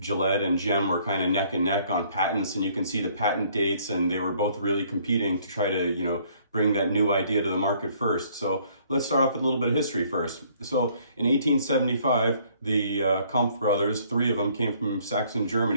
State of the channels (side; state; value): both; inverted; correlation -0.62